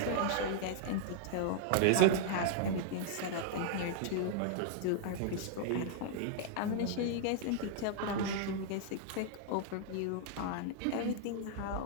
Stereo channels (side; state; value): both; different; correlation -0.01